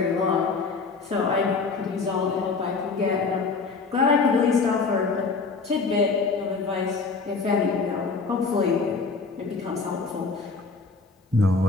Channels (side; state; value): right; quieter; 4.4 dB